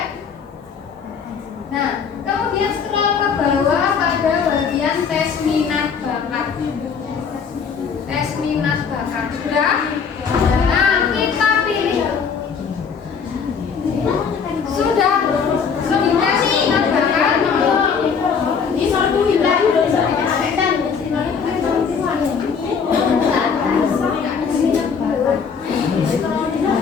Nah, kemudian scroll ke bawah pada bagian tes minat bakat. Tes minat bakat. Sudah? Nah, kita pilih. Sudah tes minat bakat.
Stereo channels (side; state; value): right; quieter; 6.2 dB